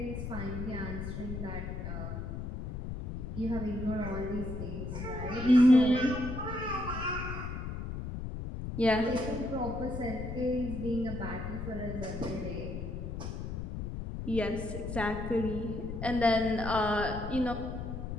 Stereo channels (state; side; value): noise; left; rumble, 6 dB below the sound